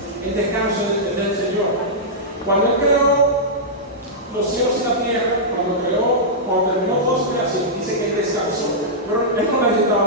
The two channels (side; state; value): both; normal; correlation -0.12